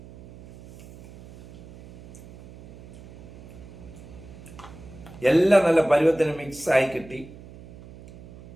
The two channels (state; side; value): noise; right; hum, 19 dB below the sound